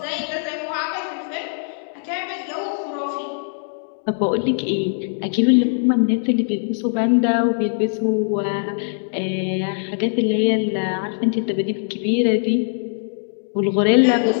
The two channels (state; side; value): silent; right; digital silence